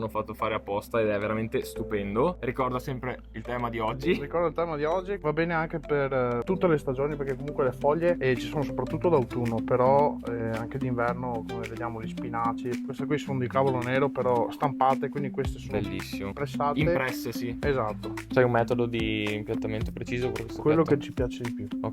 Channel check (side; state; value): both; identical; correlation 1.00